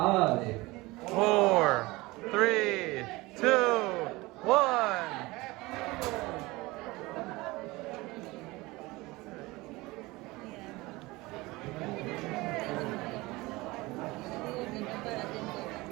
4, 3, 2, 1.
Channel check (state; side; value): quieter; left; 21.6 dB